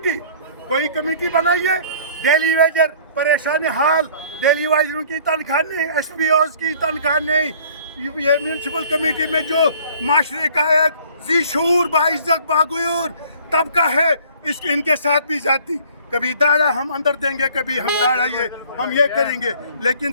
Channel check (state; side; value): inverted; both; correlation -0.53